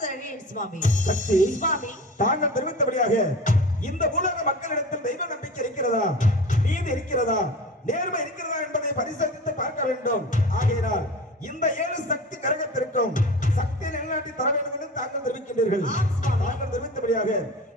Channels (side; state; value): both; normal; correlation 0.35